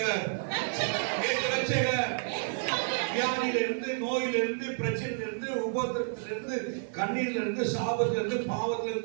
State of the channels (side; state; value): left; silent; 58 dB below the other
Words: இயேசு ரட்சகர். வியாதியிலிருந்து, நோயிலிருந்து, பிரச்சனையிலிருந்து, உபத்திரத்திலிருந்து, கண்ணீரிலிருந்து, சாபத்திலிருந்து,